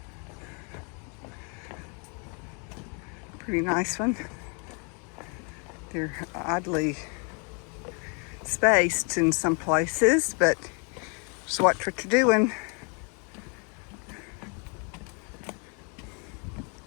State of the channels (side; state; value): right; quieter; 35.8 dB